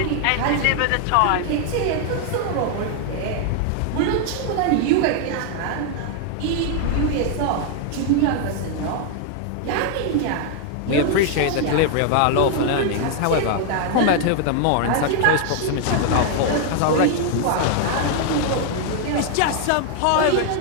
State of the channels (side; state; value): both; different; correlation 0.00